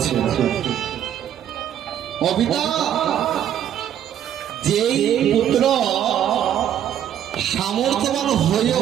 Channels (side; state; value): left; quieter; 10.3 dB